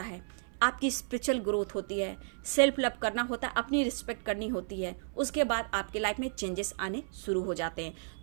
है। आपकी स्पिरिचुअल ग्रोथ होती है, सेल्फ लव करना होता है, अपनी रिस्पेक्ट करनी होती है। उसके बाद आपके लाइफ में चेंजेस आने शुरू हो जाते हैं।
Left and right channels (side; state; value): left; silent; 56 dB below the other